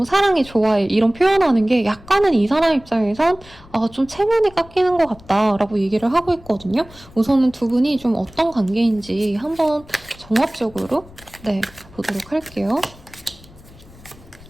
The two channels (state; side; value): noise; left; rumble, 22 dB below the sound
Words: 사랑해, 좋아해 이런 표현하는 게 약간은 이 사람 입장에선 좀 체면이 깎이는 것 같다라고 얘기를 하고 있거든요. 우선은 두 분이 좀 어떤 관계인지 한번 종합적으로 보도록 할게요.